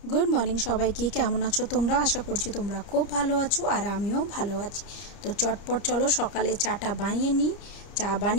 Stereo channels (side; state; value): right; late; 30 ms